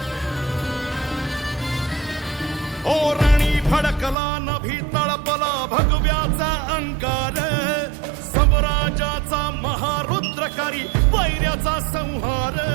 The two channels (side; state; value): left; drops out; at 4.2 s